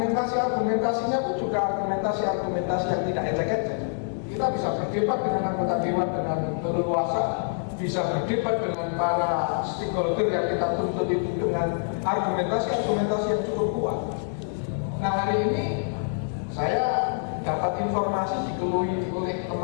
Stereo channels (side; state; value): right; silent; digital silence